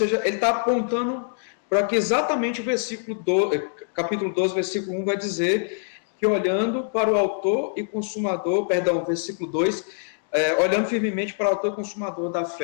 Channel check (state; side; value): silent; right; digital silence